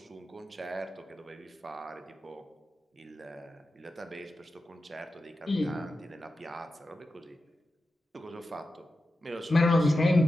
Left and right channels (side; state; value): both; normal; correlation 0.91